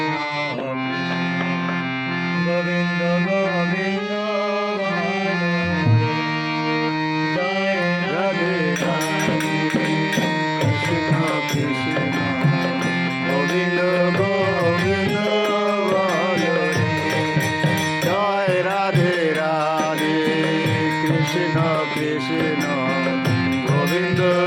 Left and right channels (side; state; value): both; identical; correlation 1.00